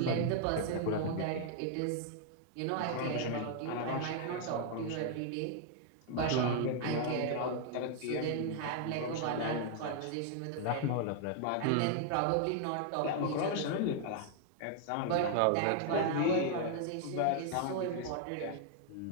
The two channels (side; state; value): both; different; correlation 0.00